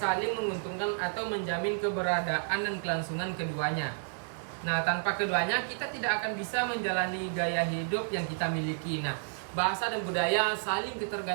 menguntungkan atau menjamin keberadaan dan kelangsungan keduanya. Nah, tanpa keduanya kita tidak akan bisa menjalani gaya hidup yang kita miliki. Nah, bahasa dan budaya saling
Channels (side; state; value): left; silent; digital silence